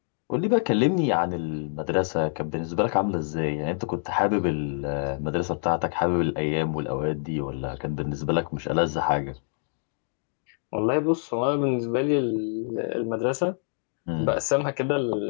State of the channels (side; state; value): right; silent; digital silence